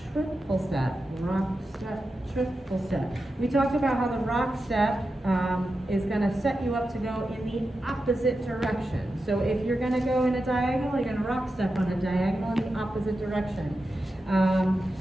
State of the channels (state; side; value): normal; both; correlation 0.90